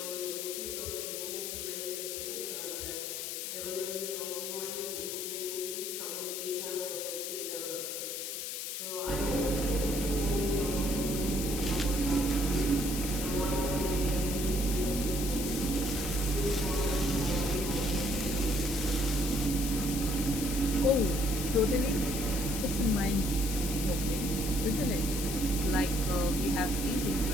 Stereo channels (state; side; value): noise; left; hiss, 4 dB below the sound